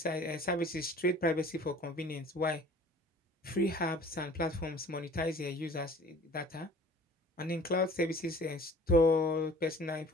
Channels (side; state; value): both; normal; correlation 0.48